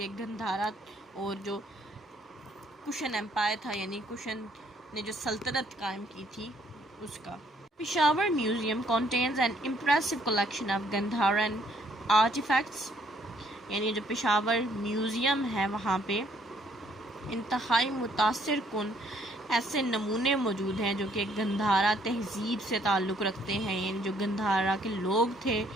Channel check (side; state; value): both; normal; correlation 0.66